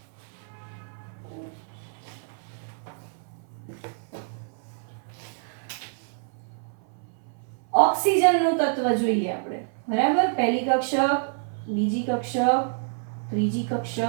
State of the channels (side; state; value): left; silent; 57 dB below the other